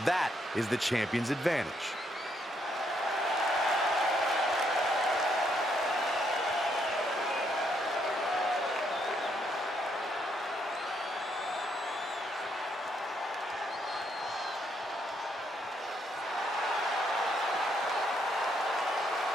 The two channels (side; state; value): both; normal; correlation 0.74